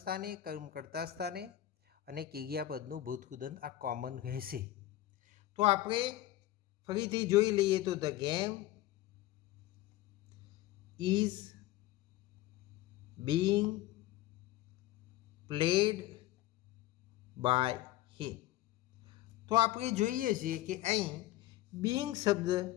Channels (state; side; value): quieter; right; 15.0 dB